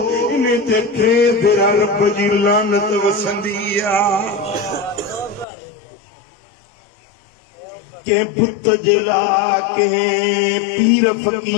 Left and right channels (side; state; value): right; drops out; at 5.5 s